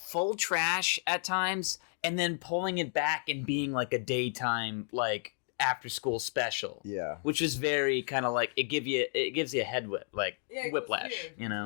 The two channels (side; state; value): right; silent; 56 dB below the other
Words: trash at times and then pulling it back and being like a daytime like after school special. Yeah. Which is very kind of like it gives you a head whip like Yeah, it was whiplash. weird. You